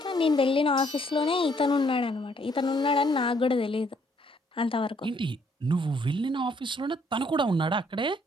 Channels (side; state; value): both; normal; correlation 0.67